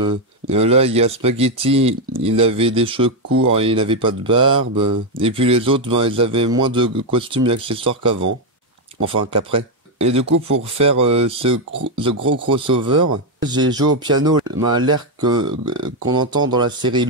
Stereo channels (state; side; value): normal; both; correlation 0.03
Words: Là il y a Spaghetti, il avait des cheveux courts et il n'avait pas de barbe. Et puis les autres ils avaient moins de costumes et accessoires qu'avant. Enfin qu'après. Et du coup pour faire ce gros crossover, j'ai joué au piano l'air qu'on entend dans la série